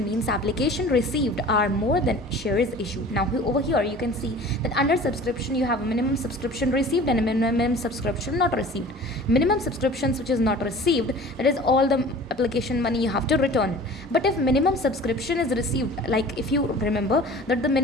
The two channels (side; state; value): both; normal; correlation 0.43